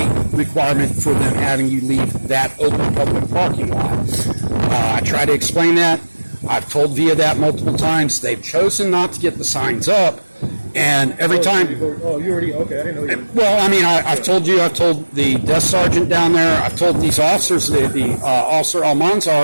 requirement for them having you leave that open public parking lot. I try to explain that. I've told VIA that multiple times. They've chosen not to get the signs up. And every time... Oh, you already... Okay, I didn't know you... Well, I mean, I've told you, I've told the desk sergeant down there, I've told these officers, the officer Almanza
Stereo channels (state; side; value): inverted; both; correlation -1.00